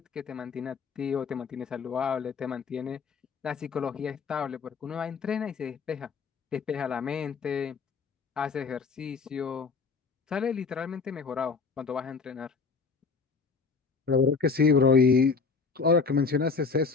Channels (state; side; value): quieter; right; 4.9 dB